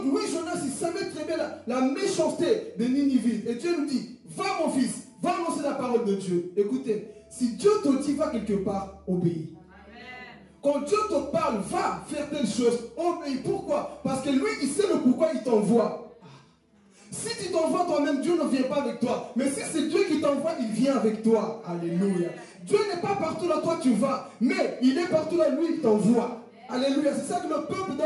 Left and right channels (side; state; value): both; identical; correlation 1.00